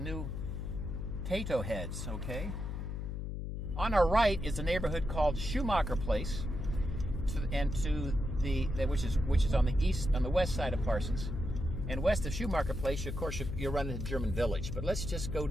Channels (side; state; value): left; noise; hum, 4 dB below the sound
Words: Tato Heads, okay? On our right is a neighborhood called Schumacher Place, which is on the west side of Parsons. And west of Schumacher Place, of course, you'll run into German Village. But let's just go